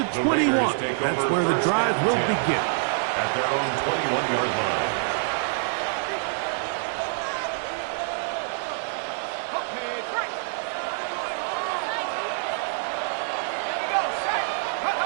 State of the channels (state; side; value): silent; left; digital silence